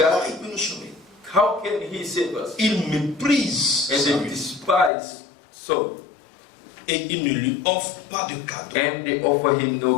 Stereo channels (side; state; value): right; drops out; at 4.9 s